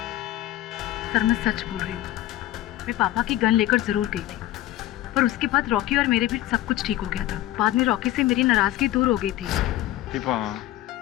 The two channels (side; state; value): right; quieter; 15.0 dB